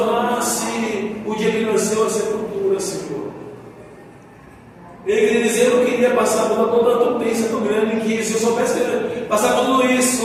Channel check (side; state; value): both; identical; correlation 1.00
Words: o dia que nasceu a sepultura, Senhor. Ele queria dizer: eu não queria passar por toda a tupência tão grande que, se eu soubesse passar por tudo isso,